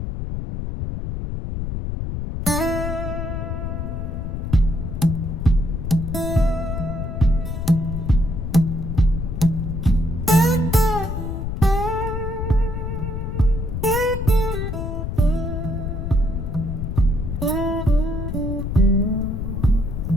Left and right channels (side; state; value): left; noise; rumble, 3 dB below the sound